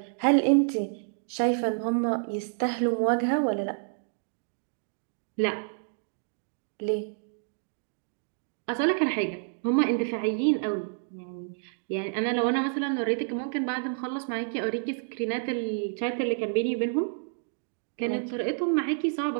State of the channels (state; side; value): silent; left; digital silence